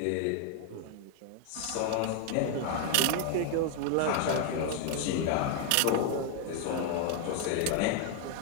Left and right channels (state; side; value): different; both; correlation 0.00